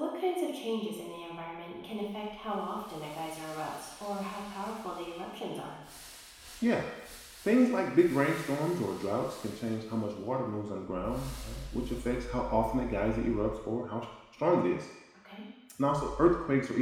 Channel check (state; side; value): identical; both; correlation 1.00